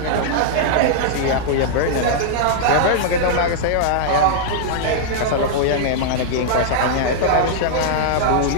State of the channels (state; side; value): different; both; correlation -0.01